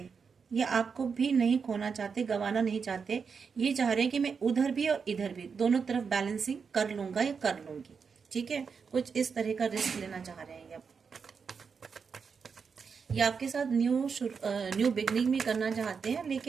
ये आपको भी नहीं खोना चाहते, गंवाना नहीं चाहते। ये चाह रहे हैं कि मैं उधर भी और इधर भी दोनों तरफ बैलेंसिंग कर लूंगा या कर लूंगी। ठीक है, कुछ इस तरह का रिस्क लेना चाह रहे हैं ये। ये आपके साथ न्यू बिगनिंग भी करना चाहते हैं,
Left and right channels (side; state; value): left; quieter; 5.8 dB